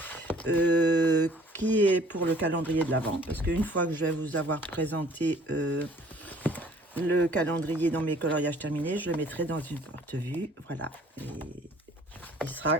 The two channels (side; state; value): both; normal; correlation 0.55